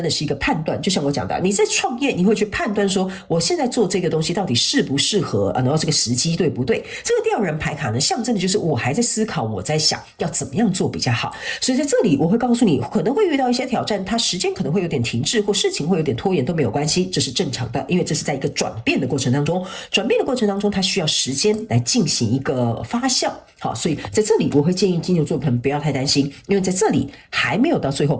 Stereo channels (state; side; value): identical; both; correlation 1.00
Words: 的是一個判斷，就像我講的，你在創業，你會去判斷說，我現在做這個東西到底適不適合，然後這個時機對不對？這個吊人牌卡呢，象徵的就是我還在思考，我在想要怎麼樣做比較好。所以在這裡，我會告訴你，可能會遇到一些挑戰，它時間可能會有點停滯，或事情會有點拖延都沒有關係，這是正常的，因為這是在一個轉變的過程當中，轉變的過程當中，它需要時間來進行一個發酵。好，所以在這裡我會建議金牛座的朋友不要太擔心，因為在這裡還沒有到最後